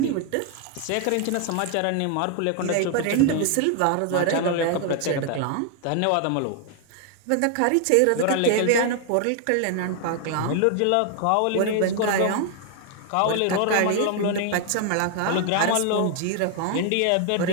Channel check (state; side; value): different; both; correlation 0.00